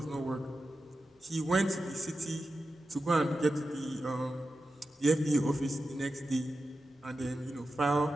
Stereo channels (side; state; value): both; normal; correlation 0.92